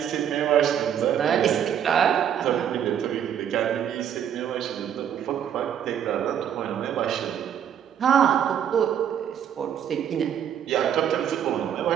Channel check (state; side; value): quieter; left; 9.2 dB